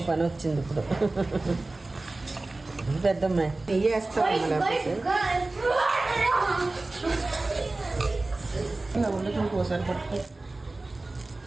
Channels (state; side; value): quieter; left; 3.1 dB